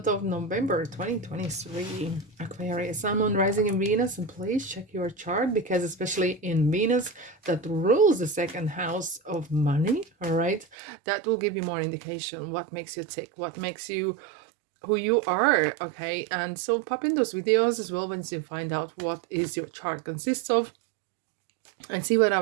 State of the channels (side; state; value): left; drops out; at 10.8 s